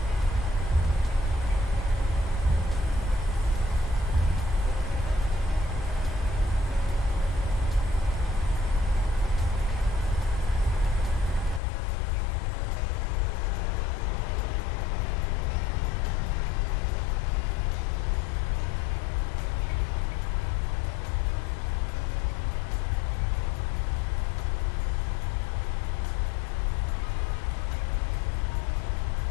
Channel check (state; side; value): drops out; right; at 11.6 s